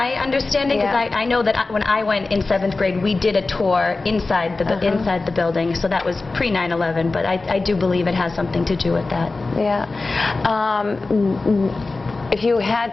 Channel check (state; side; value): quieter; right; 3.6 dB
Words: understanding, because I know that when I went in 7th grade, we did a tour inside the building, so that was pre 9/11, but I do believe it has something to do with that. Yeah. If you